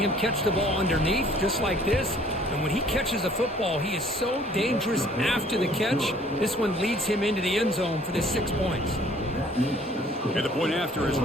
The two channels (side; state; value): both; normal; correlation 0.56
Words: catch the ball underneath, just like this. And when he catches a football, he is so dangerous after the catch. This one leads him into the end zone for the 6 points. And the point after is